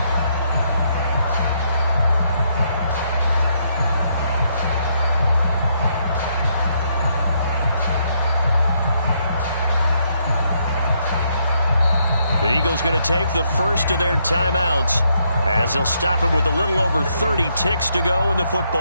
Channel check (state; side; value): inverted; both; correlation -0.75